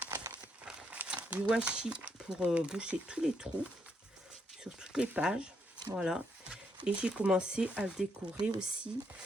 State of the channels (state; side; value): normal; both; correlation 0.76